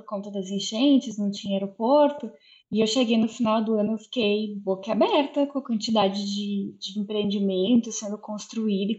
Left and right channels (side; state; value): both; identical; correlation 1.00